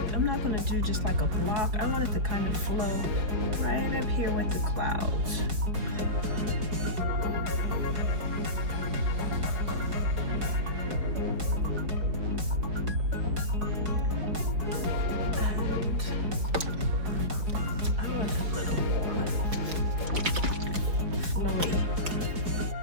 I'm not going to do just like a block. I want it to kind of flow right up here with the clouds. And I want it a little more flowy.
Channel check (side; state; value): left; late; 4.7 ms